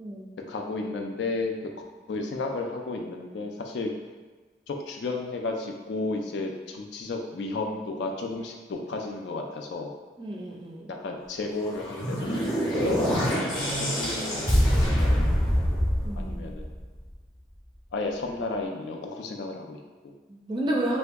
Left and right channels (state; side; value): normal; both; correlation 0.67